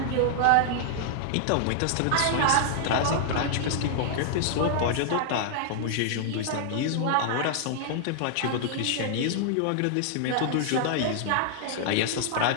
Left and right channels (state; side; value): different; both; correlation -0.01